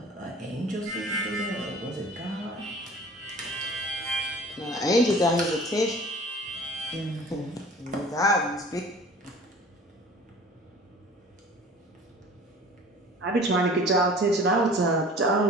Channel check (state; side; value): normal; both; correlation 0.45